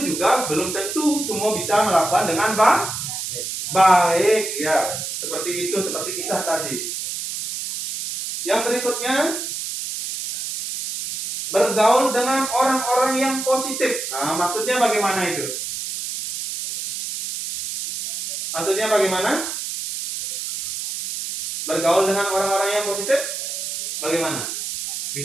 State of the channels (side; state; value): right; noise; hiss, 5 dB below the sound